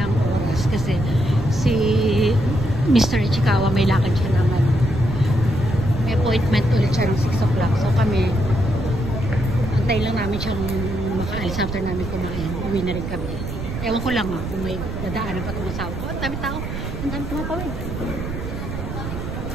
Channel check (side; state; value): right; noise; rumble, 6 dB below the sound